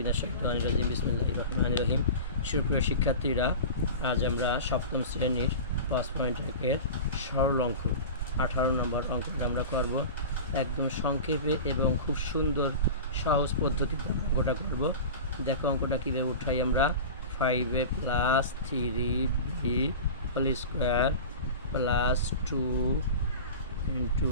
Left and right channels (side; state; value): both; inverted; correlation -0.32